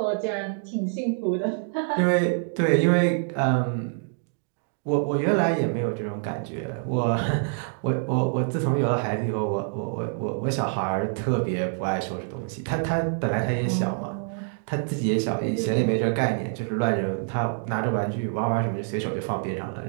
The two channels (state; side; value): silent; left; 61 dB below the other